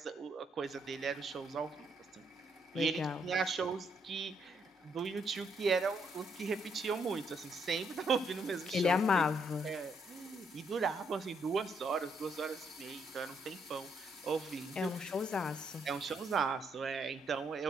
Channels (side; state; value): both; normal; correlation 0.73